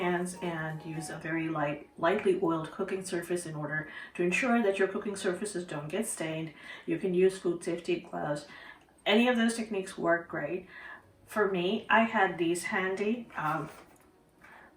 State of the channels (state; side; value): identical; both; correlation 1.00